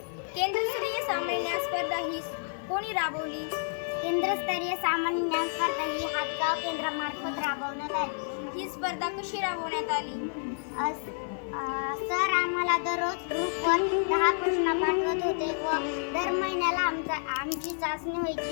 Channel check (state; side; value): silent; right; 58 dB below the other